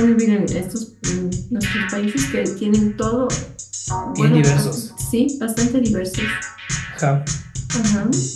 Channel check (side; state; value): both; identical; correlation 1.00